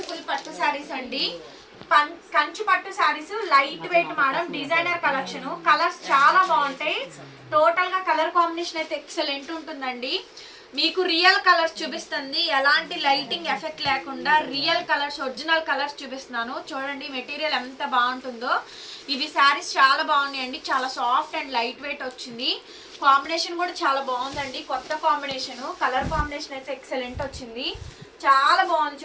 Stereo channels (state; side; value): identical; both; correlation 1.00